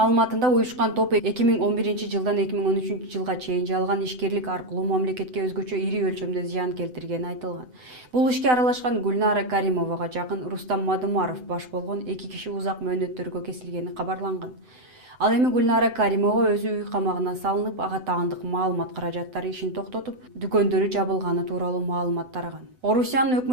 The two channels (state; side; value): late; left; 7.9 ms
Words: уюшкан топ 2011 жылдан 2013 жылга чейин жалган ишкерлик аркылуу мамлекетке өзгөчө ири өлчөмдө зыян келтиргени айтылган. Бул ишке аралашкан Гульнара Каримовага жакын Рустам Мадумаров баш болгон 2 киши узак мөөнөттөргө кесилгени кабарланган. Ал эми Гульнара Каримова өзү үй камагына салынып, ага таандык маалымат каражаттары ишин токтотуп, дүкөндөрү жабылганы тууралуу маалымат тараган. Орусиянын